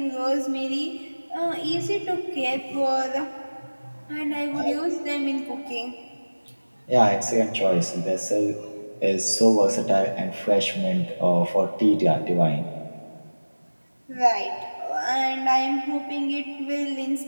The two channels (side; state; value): both; inverted; correlation -1.00